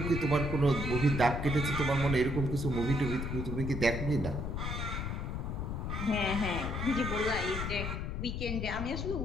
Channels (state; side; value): noise; left; rumble, 3 dB below the sound